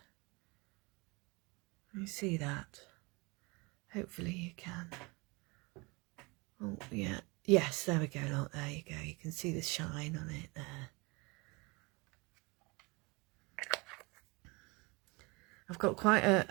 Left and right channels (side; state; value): left; quieter; 26.7 dB